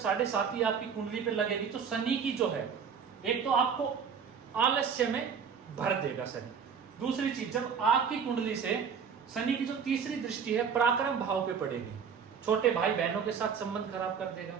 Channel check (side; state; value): left; quieter; 6.7 dB